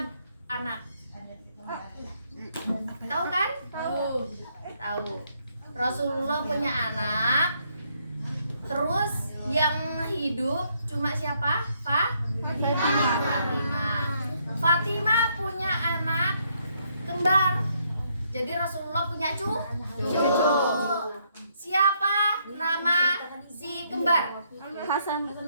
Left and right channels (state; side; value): inverted; both; correlation -0.72